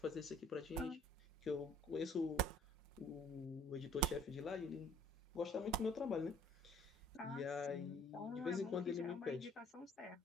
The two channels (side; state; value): both; normal; correlation 0.56